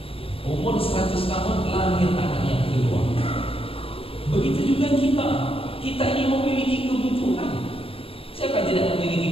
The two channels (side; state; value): right; late; 0.27 ms